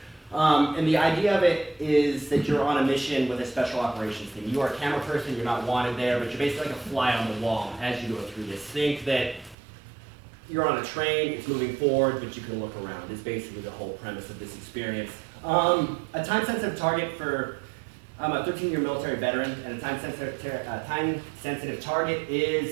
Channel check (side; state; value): left; drops out; at 9.6 s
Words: And the idea of it is that you're on a mission with a special operations team. You are a camera person, you're not wanted there, but you're basically like a fly on the wall as you go through this. Think that you're on a train, it's moving forward, but you can look around. It's basically the whole premise of this experience. A time-sensitive target for, I'm a 13-year military veteran, and a time-sensitive target